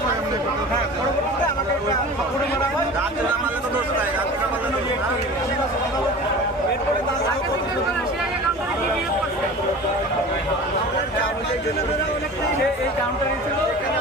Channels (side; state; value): both; normal; correlation 0.37